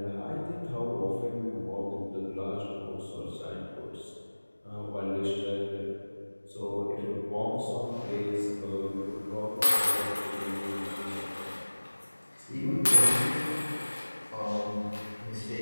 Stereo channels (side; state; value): both; inverted; correlation -1.00